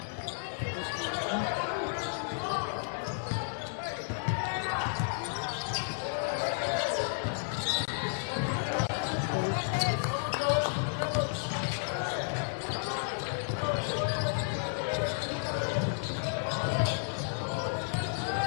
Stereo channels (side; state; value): right; silent; digital silence